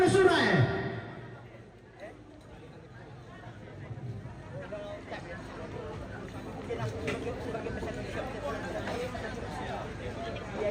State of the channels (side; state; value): both; identical; correlation 1.00